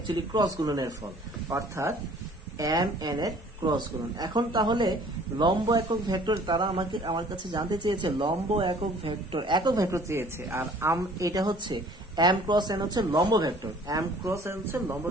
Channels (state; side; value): normal; both; correlation 0.52